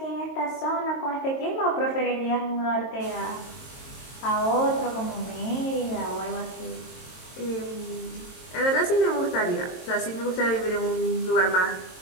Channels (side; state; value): right; late; 22 ms